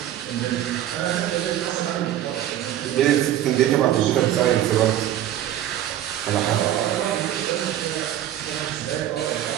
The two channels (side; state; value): left; quieter; 12.1 dB